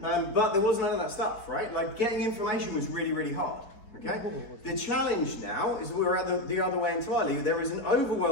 But there was none of that stuff, right? Like getting information was really, really hard, okay? The challenge now is that we're at the other way entirely. There is an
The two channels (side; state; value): right; late; 3.9 ms